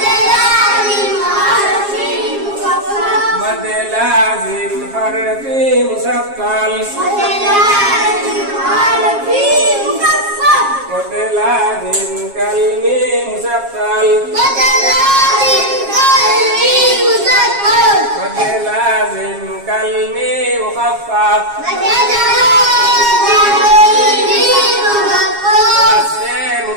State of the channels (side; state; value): left; late; 7.4 ms